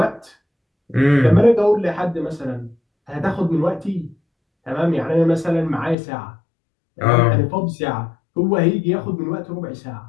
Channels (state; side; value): drops out; right; at 6.0 s